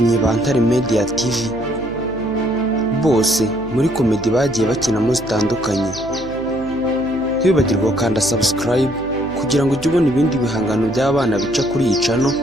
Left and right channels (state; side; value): noise; right; hum, 16 dB below the sound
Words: ba Ntare Media TV bose muri komedi bagiye bakinamo zitandukanye. Ntibibagirwe gukanda subscribe kugira ngo ujye ubona ibindi bihangano by'abana bica kuri iyi channel,